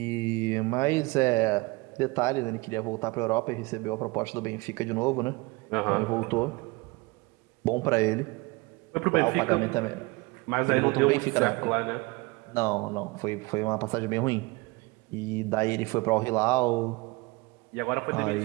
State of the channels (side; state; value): left; quieter; 24.9 dB